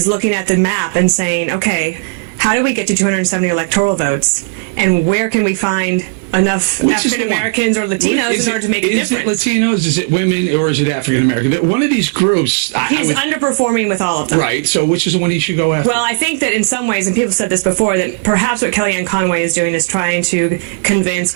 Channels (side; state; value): left; silent; 67 dB below the other